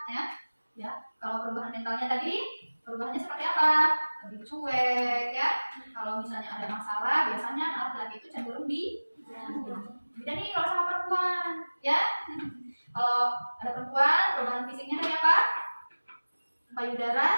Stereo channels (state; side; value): inverted; both; correlation -1.00